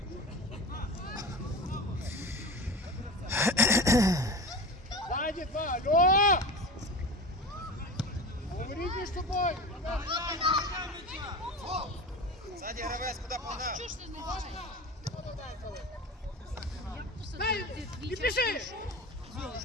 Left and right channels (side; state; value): both; normal; correlation 0.31